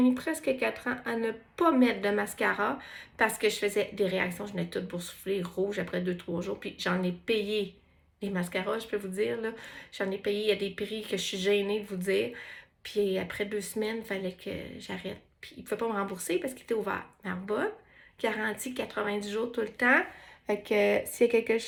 presque 4 ans à ne pas mettre de mascara parce que je faisais des réactions. Je venais toute boursouflée, rouge après 2-3 jours. Puis j'en ai payé les mascaras, je peux vous dire, là. J'en ai payé, il y a des prix que je suis gênée de vous dire. Puis après 2 semaines, il fallait que j'arrête. Puis il ne pouvait pas me rembourser parce qu'il était ouvert. Narbonne, garantie 90 jours tout le temps. Fait que s'il y a quelque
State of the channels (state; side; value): identical; both; correlation 1.00